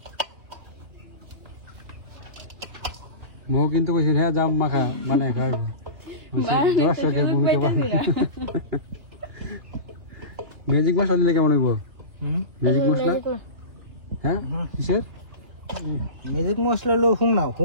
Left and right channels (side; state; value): left; late; 2.9 ms